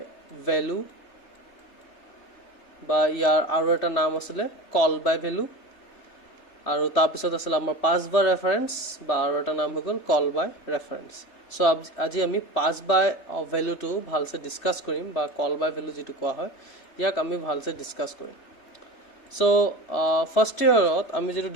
value বা ইয়াৰ আৰু এটা নাম আছিল call by value আৰু তাৰ পিছত আছিল আমাৰ pass by reference বা আৰু এটা নাম হৈ গ'ল call by reference. সো আজি আমি pass by value টো ভালসে ডিসকাস কৰিম বা call by value যেটো কোৱা হয় ইয়াক আমি ভালসে ডিসকাস কৰিম. So first year আমি যেটো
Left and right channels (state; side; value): late; right; 3.3 ms